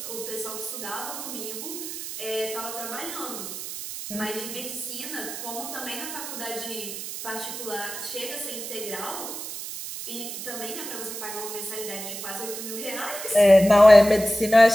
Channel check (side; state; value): right; noise; hiss, 8 dB below the sound